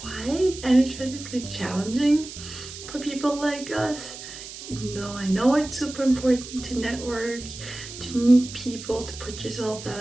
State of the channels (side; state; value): right; noise; hiss, 12 dB below the sound